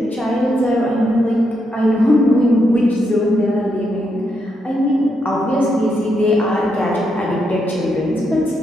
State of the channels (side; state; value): both; normal; correlation 0.80